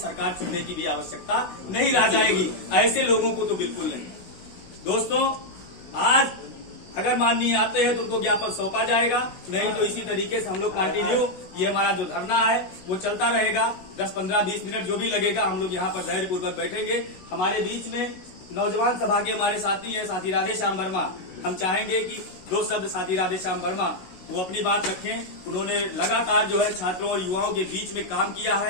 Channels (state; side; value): late; right; 16 ms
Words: चुनने की भी आवश्यकता नहीं रह जाएगी। ऐसे लोगों को तो बिल्कुल नहीं। दोस्तों, आज अगर माननीय आते हैं तो उनको ज्ञापन सौंपा जाएगा, नहीं तो इसी तरीके से हम लोग कंटिन्यू ये हमारा जो धरना है वो चलता रहेगा। 10, 15, 20 मिनट जो भी लगेगा हम लोग यहाँ पर धैर्य पूर्वक बैठेंगे। हमारे बीच में नौजवान सभा के हमारे साथी हैं, साथी राधेश्याम वर्मा। हम चाहेंगे कि 2 शब्द साथी राधेश्याम वर्मा वो अपनी बात रखें। उन्होंने लगातार जो है छात्रों और युवाओं के बीच में काम किया